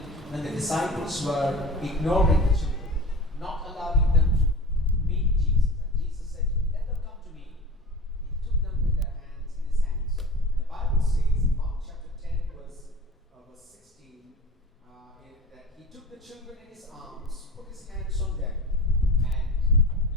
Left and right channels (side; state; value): both; normal; correlation 0.36